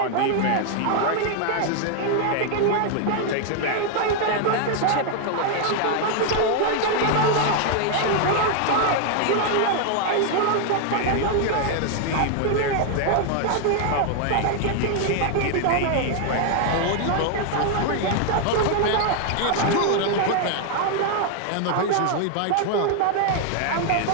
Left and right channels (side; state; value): both; different; correlation 0.00